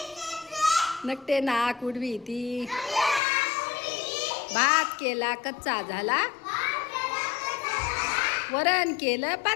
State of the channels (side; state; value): right; drops out; at 3.2 s